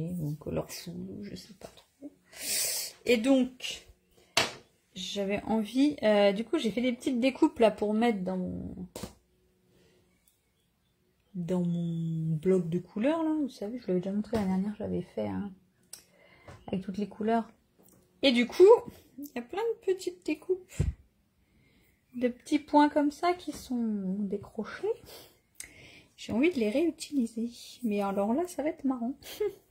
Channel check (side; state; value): both; identical; correlation 1.00